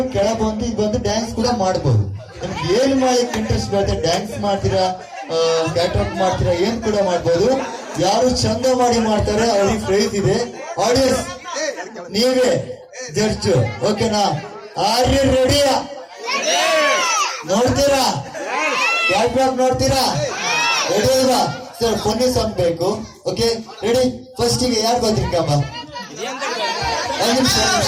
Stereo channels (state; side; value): identical; both; correlation 1.00